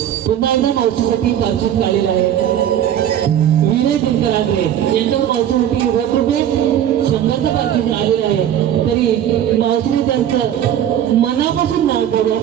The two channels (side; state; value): left; quieter; 10.6 dB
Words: पुन्हा एकदा मावशीसाठी पार्श्वत आलेला आहे. विनय दिनकर आगरे यांच्यावर मावशीसाठी 1 रुपये 100चं पार्श्वत आलेलं आहे. तरी मावशीने त्यांचं मनापासून नाव बोलू